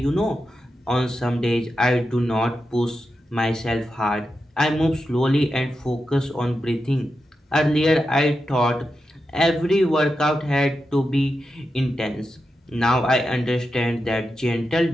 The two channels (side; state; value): both; normal; correlation 0.89